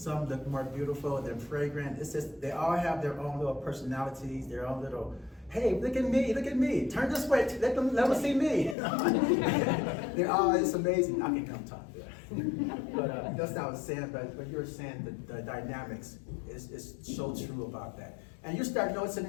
look more beautiful than fragrant. It's just, they all have their own little personalities, their own little, hey, look at me, turn this way, let them see me. They're all, it's amazing. I can come talk there. But that's what I was saying, but when you were saying the dynamics is so true about that. And you start noticing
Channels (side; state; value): right; drops out; at 8.8 s